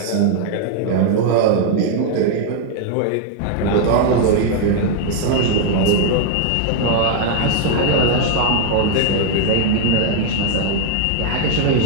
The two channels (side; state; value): both; different; correlation 0.00